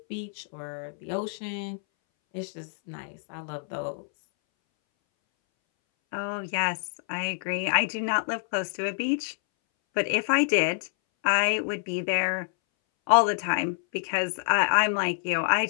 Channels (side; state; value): right; silent; 60 dB below the other